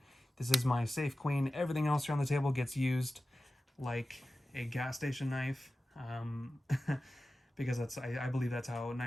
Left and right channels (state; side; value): normal; both; correlation 0.95